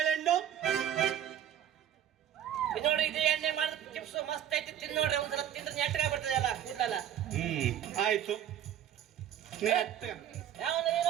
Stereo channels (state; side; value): quieter; left; 10.3 dB